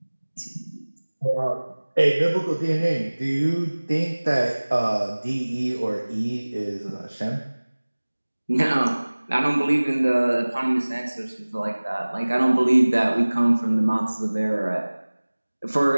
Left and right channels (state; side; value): inverted; both; correlation -1.00